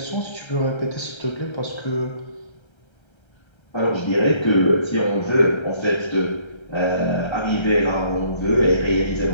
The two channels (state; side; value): late; right; 1.3 ms